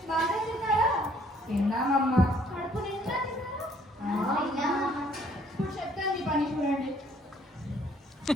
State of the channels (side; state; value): both; normal; correlation 0.62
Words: బాగా తిన్నారా? తిన్నామమ్మా. కడుపు నిండా తిన్నారా? తిన్నామమ్మా. ఇప్పుడు చెప్తాను మీ పని చూడండి.